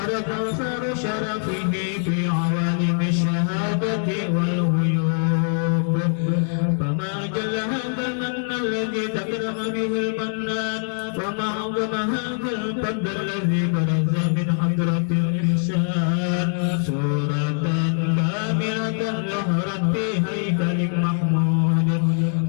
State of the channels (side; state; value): right; silent; digital silence